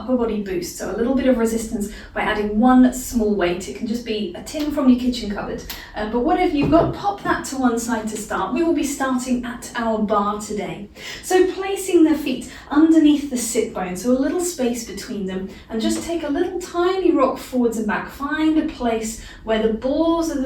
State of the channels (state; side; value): identical; both; correlation 1.00